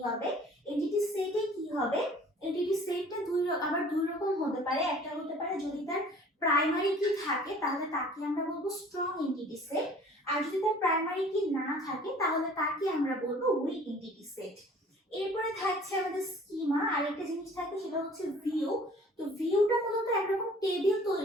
হবে। এন্টিটি সেটে কি হবে, এন্টিটি সেটটা আবার দুই রকম হতে পারে। একটা হতে পারে যদি তার প্রাইমারি কি থাকে তাহলে তাকে আমরা বলবো স্ট্রং এন্টিটি সেট, আর যদি তার প্রাইমারি কি না থাকে তাহলে তাকে আমরা বলবো উইক এন্টিটি সেট। এরপরে থাকছে আমাদের স্কিমা, আরেকটা জিনিস থাকে সেটা হচ্ছে ভিউ। তো ভিউটা মূলত একরকম টেবিল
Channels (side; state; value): both; normal; correlation 0.51